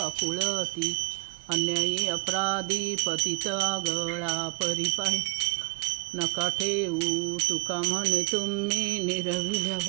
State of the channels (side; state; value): left; quieter; 31.0 dB